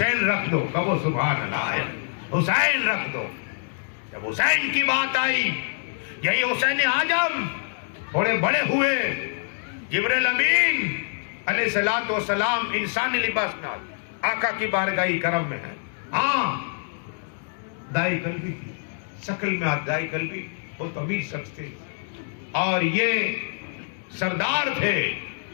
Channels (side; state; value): right; silent; digital silence